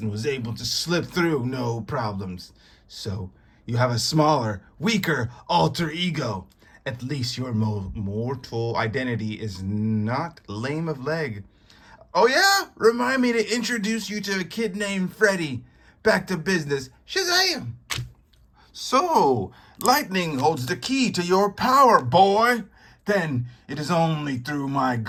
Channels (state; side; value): identical; both; correlation 1.00